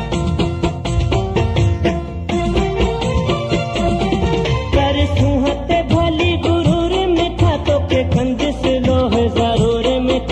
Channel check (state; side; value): identical; both; correlation 1.00